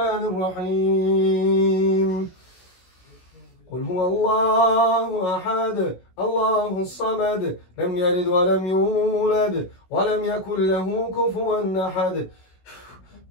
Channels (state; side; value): late; right; 16 ms